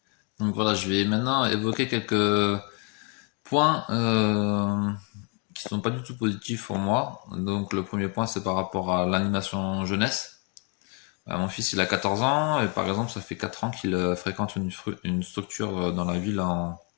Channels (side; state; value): right; quieter; 36.4 dB